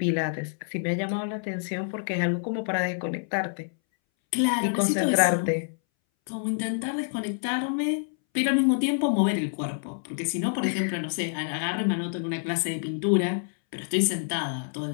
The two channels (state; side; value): silent; right; 60 dB below the other